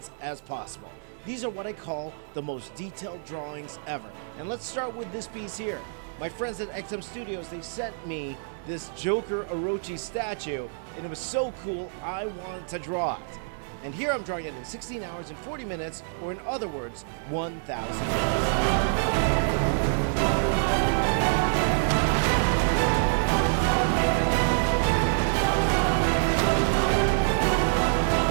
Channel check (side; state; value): left; silent; 60 dB below the other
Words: as possible. These are what I call the most detailed drawings ever. And let's start with this piece here. My friends at XM Studios, they sent me this Joker Orochi statue, and it was so cool, I wanted to draw it. And here I'm drawing it in 16 hours and 40 minutes, or in other words, 1,000